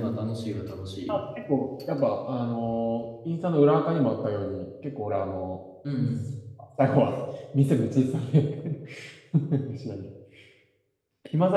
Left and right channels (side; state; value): both; identical; correlation 1.00